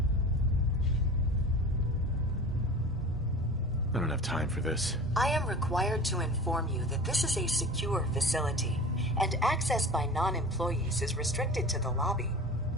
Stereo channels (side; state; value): both; normal; correlation 0.36